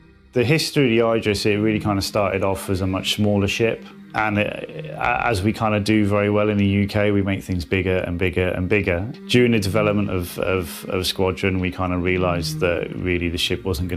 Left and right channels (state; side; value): identical; both; correlation 1.00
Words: The history of the Idris, it really kind of started off as a much smaller ship. And as we kind of do very well in the UK, we make things bigger and bigger and bigger. During the development of Squadron, we kind of realised that really the ship wasn't